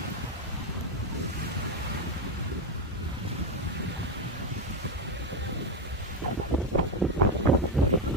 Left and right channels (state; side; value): normal; both; correlation 0.09